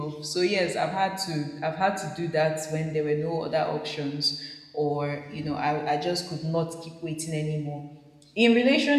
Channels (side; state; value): both; identical; correlation 1.00